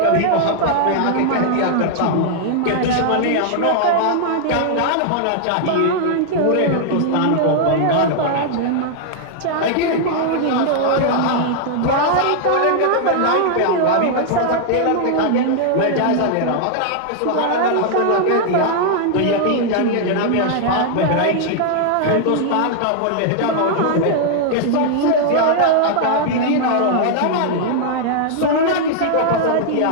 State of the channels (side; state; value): both; different; correlation -0.01